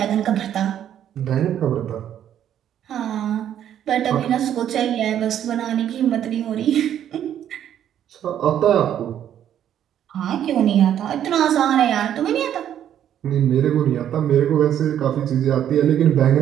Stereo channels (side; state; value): left; quieter; 10.3 dB